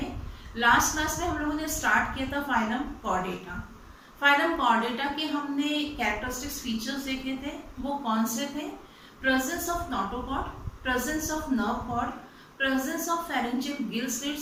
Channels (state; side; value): identical; both; correlation 1.00